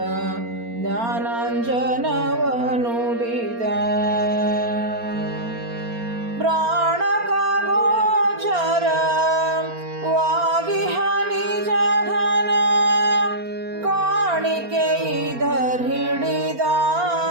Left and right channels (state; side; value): late; left; 4.3 ms